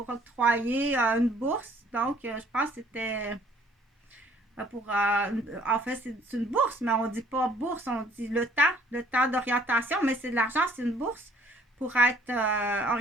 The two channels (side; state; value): both; normal; correlation 0.59